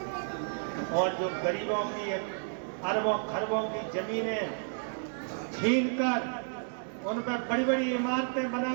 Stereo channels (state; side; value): silent; left; digital silence